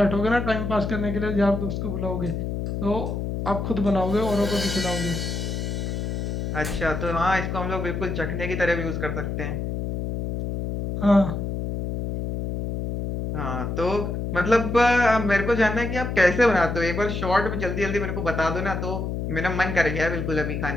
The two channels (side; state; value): left; noise; hum, 3 dB below the sound